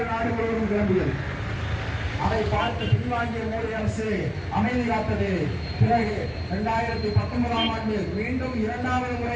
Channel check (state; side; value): identical; both; correlation 1.00